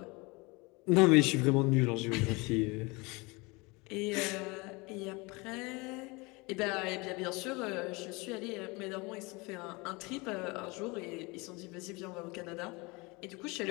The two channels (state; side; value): quieter; right; 26.1 dB